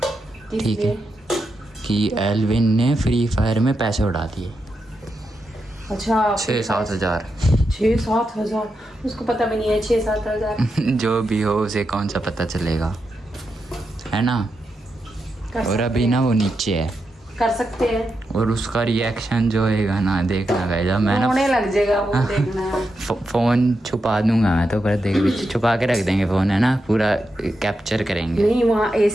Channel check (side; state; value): both; normal; correlation 0.86